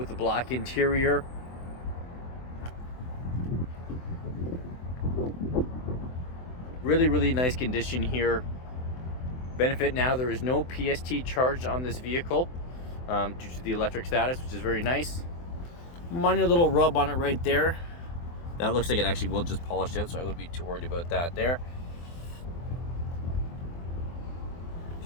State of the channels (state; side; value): late; right; 24 ms